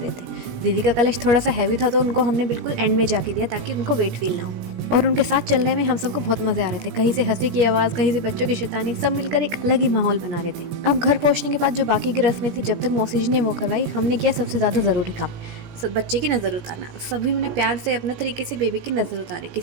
थे। दीदी का कलश थोड़ा सा हैवी था तो उनको हमने बिल्कुल एंड में जाके दिया ताकि उनको वेट फील ना हो। और उनके साथ चलने में हम सबको बहुत मजे आ रहे थे। कहीं से हंसी की आवाज़, कहीं से बच्चों की शैतानी, सब मिलकर एक अलग ही माहौल बना रहे थे। अब घर पहुंचने के बाद जो बाकी की रस्में थी जब तक मौसी जी ने वो करवाई, हमने किया सबसे ज़्यादा ज़रूरी काम, बच्चे की नज़र उतारना। सभी ने प्यार से अपने तरीके से बेबी की नज़र उतारी।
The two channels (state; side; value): late; left; 17 ms